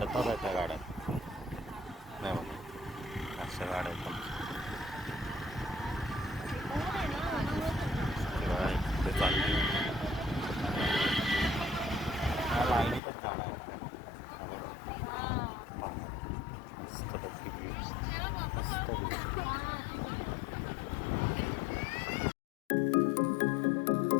आहे त्या गाड्या. नाही बघा, अशा गाड्या आहेत ते चालली. लाईनीतच गाड्या आहेत. मस्त बघ, मस्त.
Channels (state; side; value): drops out; right; at 13.0 s